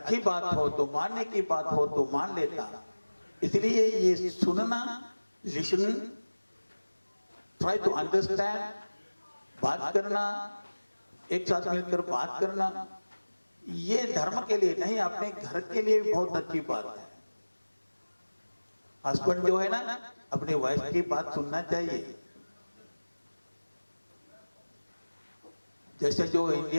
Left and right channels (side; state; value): both; inverted; correlation -1.00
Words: बात हो तो मानने की बात हो तो मान लेता। इसलिए ये सुनना, लिसनिंग, ट्राई टू अंडरस्टैंड, बात करना, एक साथ मिलकर बात करना, ये धर्म के लिए नहीं, अपने घर के लिए बहुत अच्छी बात है। हस्बैंड जो है ना, अपनी वाइफ की बात सुनना चाहिए। जैसे जो